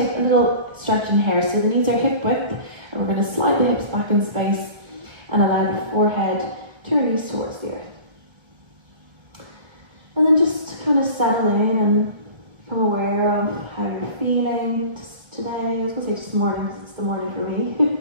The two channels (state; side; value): late; left; 1.1 ms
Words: a little stretch in here. So the knees are hip width, and we're going to slide the hips back in space and allow the forehead to release towards the earth. And then just kind of settle in and become aware of how you're feeling just today. I was going to say just morning, because it's the morning for me.